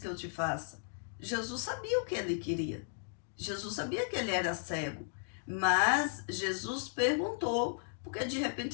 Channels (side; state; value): right; silent; digital silence